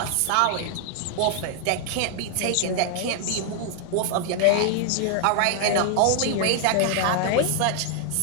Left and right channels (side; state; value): both; different; correlation 0.00